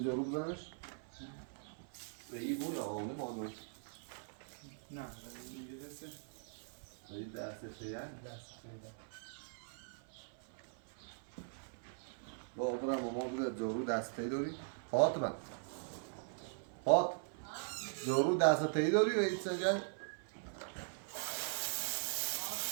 جارو بزنش؟ به این بود آقا نه باید باید نه اینجا دسته این دسته چیه؟ دسته با برم ماما بوده جارو دسته داری؟ فاطمه فاط جارو دسته داری و این سجن؟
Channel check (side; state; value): left; silent; 51 dB below the other